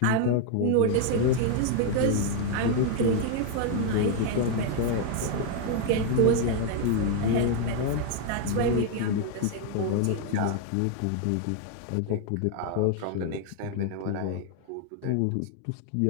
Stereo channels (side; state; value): both; different; correlation 0.00